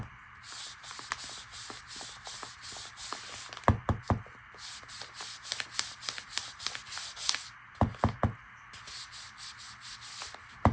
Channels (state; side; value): identical; both; correlation 1.00